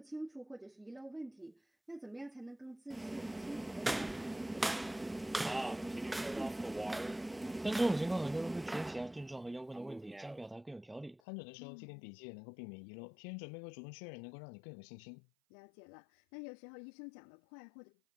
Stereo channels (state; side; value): drops out; right; at 11.2 s